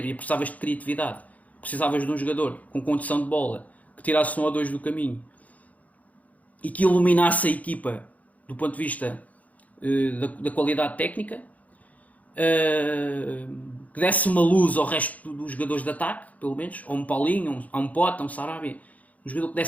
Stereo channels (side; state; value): right; late; 0.073 ms